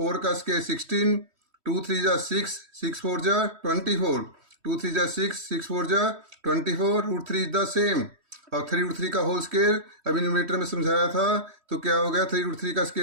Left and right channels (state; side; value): late; left; 3.1 ms